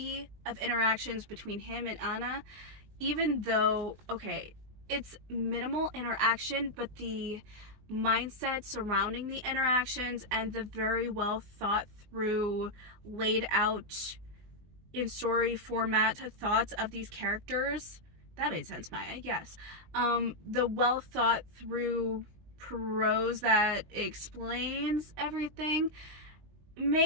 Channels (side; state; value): left; late; 19 ms